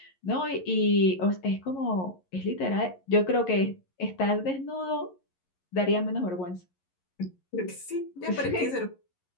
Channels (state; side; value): late; right; 11 ms